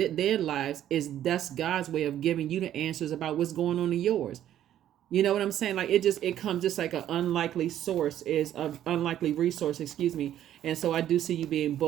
their lives. That's God's way of giving you the answers about what's going on in yours. You know what I'm saying? It comes just like an unlikely source is an unlikely resource, excuse me. And so I do see you being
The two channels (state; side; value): quieter; left; 11.5 dB